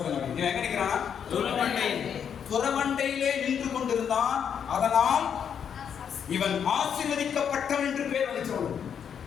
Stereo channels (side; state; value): right; quieter; 7.9 dB